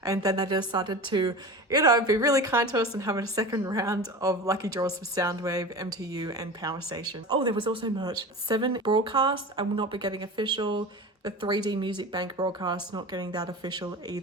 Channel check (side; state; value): both; normal; correlation 0.32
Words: And then they decided to, you know, be really kind to us and have a second round of lucky draws for Soundwave, MTU and Power Station. Oh, there was also merch. 7 broadcasts, I will not be getting official. The 3D Music Bank broadcast, not getting that official